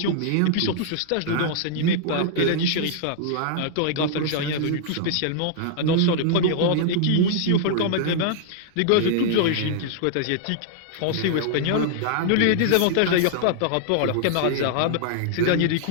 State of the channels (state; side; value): different; both; correlation -0.01